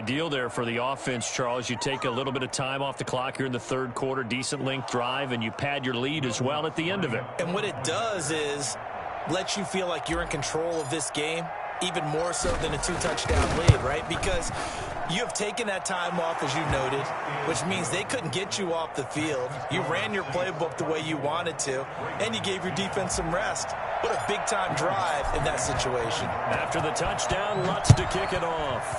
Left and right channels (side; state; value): both; identical; correlation 1.00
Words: there for the offense, Charles. You take a little bit of time off the clock here in the 3rd quarter, decent length drive, and you pad your lead as well at the end of it. And what it does is let you feel like you're in control of this game, even more so than a 2-touchdown lead, right? Because you have taken that time off, as you noted, which means they couldn't get you off the field. You ran your playbook the way you wanted to, and you gave your defense some rest. What a big-time drive in that situation. After the touchdown, Lutz to kick it